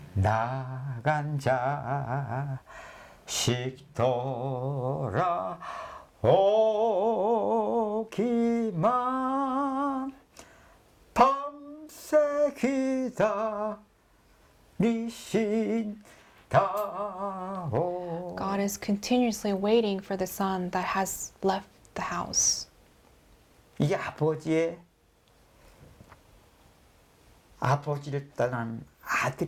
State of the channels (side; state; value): both; identical; correlation 1.00